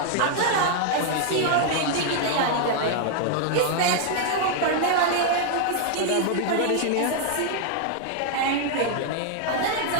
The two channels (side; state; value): both; different; correlation 0.00